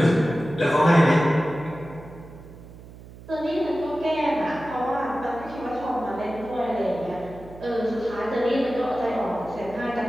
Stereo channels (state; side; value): noise; right; hum, 18 dB below the sound